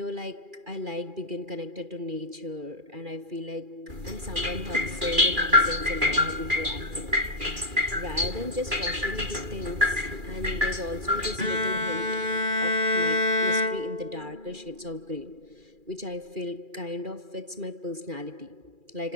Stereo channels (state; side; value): late; left; 2.4 ms